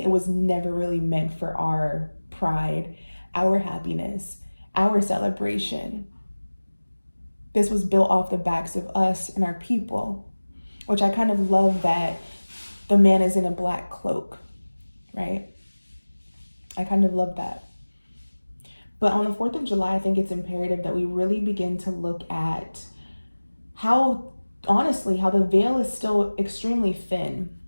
it was never really meant for our pride, our happiness, our celebration. This was built off the backs of us and our people, which I kind of love that the man is in a black cloak, right? I kind of love that. But on the 4th of July, I think it's imperative that we really begin to look at how, honestly, how the veil is still extremely thin.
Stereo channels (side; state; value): both; inverted; correlation -1.00